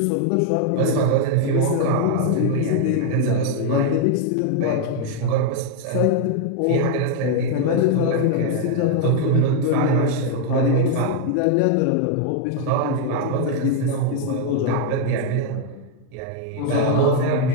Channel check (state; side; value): different; both; correlation 0.00